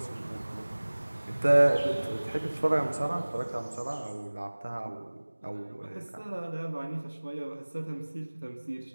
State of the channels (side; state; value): both; inverted; correlation -1.00